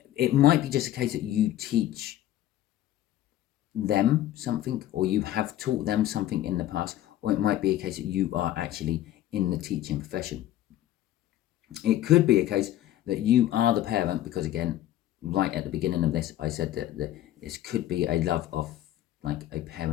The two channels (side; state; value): right; quieter; 13.3 dB